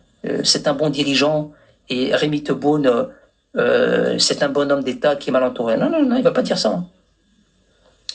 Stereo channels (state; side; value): identical; both; correlation 1.00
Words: c'est un bon dirigeant et Rémi Tebboune, c'est un bon homme d'État qui est mal entouré. Non, non, non, il va pas dire ça. Hein.